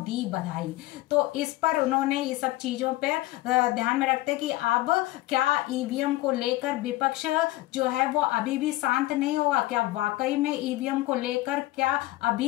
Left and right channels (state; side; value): quieter; right; 18.0 dB